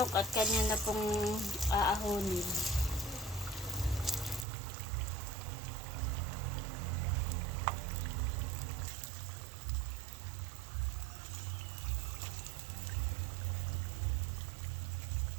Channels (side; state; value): left; drops out; at 4.5 s